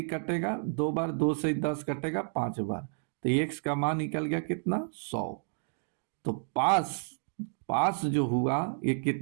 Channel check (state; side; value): silent; left; digital silence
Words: कटेगा 2 बार, 2 से ही 10 कटेगा 5 बार, तो x का मान निकल गया कितना 100। तो पास पास जो हुआ ये